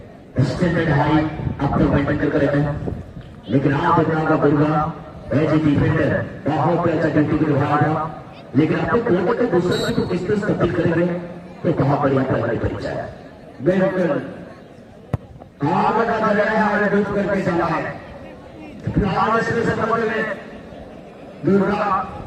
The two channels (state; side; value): identical; both; correlation 1.00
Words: स्टैंडर्ड हाई अब तक मेंटेन करके रहते हैं, लेकिन आज देखना का दुर्गा एज ए डिफेंडर बहुत अच्छा ड्यूटी को निभाया था, लेकिन आपको कोर्ट के दूसरे को किस तरह तब्दील करेंगे तो बहुत बढ़िया परिचय है। बिल्कुल आगे का दरिया है डूब करके चला है। फिलहाल इसमें से में दुर्गा